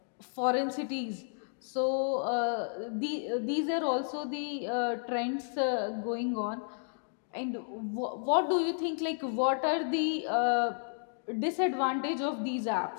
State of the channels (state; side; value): silent; right; digital silence